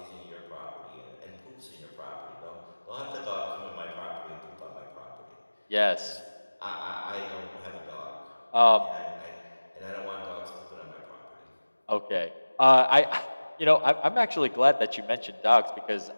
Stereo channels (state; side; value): inverted; both; correlation -1.00